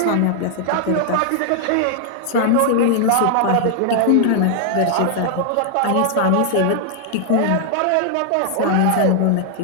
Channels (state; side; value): different; both; correlation 0.00